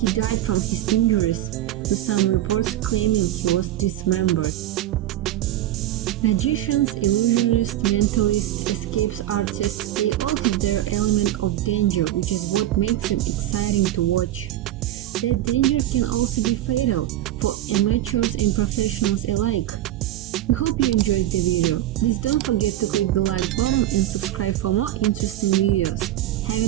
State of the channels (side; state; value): left; quieter; 13.6 dB